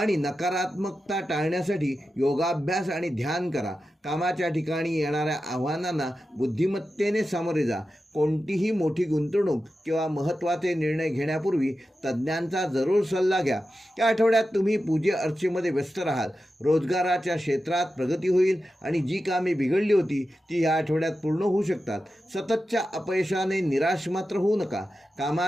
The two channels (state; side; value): normal; both; correlation 0.91